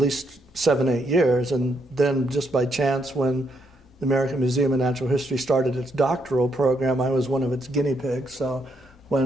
7-8 years. And then just by chance, when the American Museum of Natural History started its doctoral program, I was one of its guinea pigs. So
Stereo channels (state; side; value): normal; both; correlation 0.76